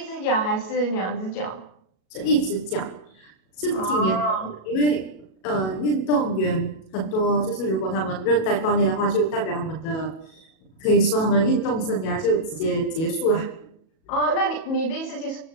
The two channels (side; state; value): right; late; 37 ms